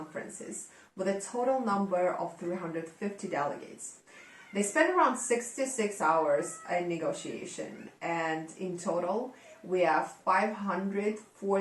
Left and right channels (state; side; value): identical; both; correlation 1.00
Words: with a total number of 350 delegates. They spent around 66 hours in negotiation, and in total, we have